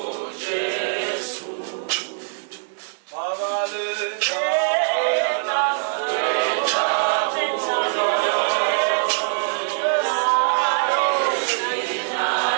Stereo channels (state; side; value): silent; left; digital silence